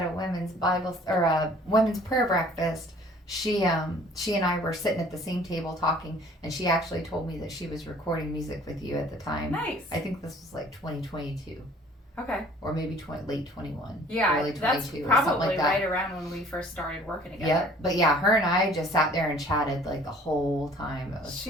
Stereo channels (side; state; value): both; normal; correlation 0.53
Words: a women's Bible or a women's prayer breakfast. She and I were sitting at the same table talking, and she actually told me that she was recording music with you at the time. Nice. I think this was like 2022. Okay. Or maybe late 21. Yeah, early 22 that's or something probably like that. right around when we first started working together. Yep. But yeah, her and I just sat there and chatted like the whole time. It was